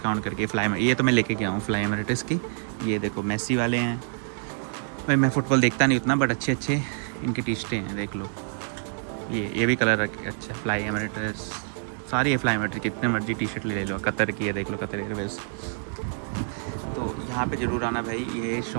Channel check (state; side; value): silent; left; digital silence